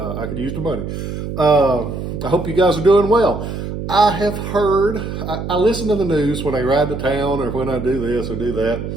could use the money. I hope you guys are doing well. I have heard, I listen to the news when I ride to town or when I do this or do that,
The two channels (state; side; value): noise; right; hum, 6 dB below the sound